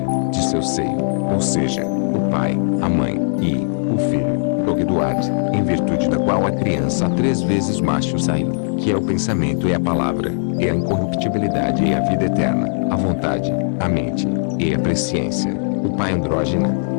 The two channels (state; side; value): silent; right; digital silence